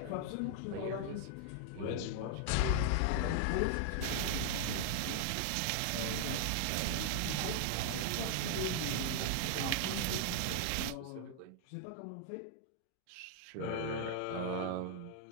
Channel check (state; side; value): different; both; correlation 0.00